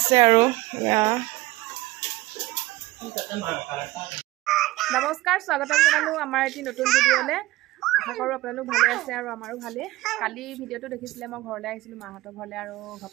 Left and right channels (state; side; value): quieter; left; 18.5 dB